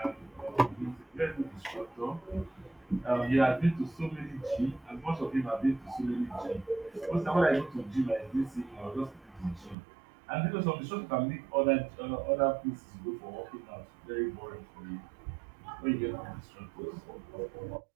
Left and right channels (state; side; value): drops out; left; at 9.8 s